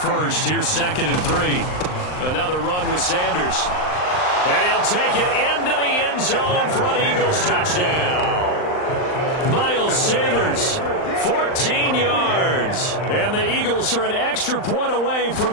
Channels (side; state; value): right; late; 39 ms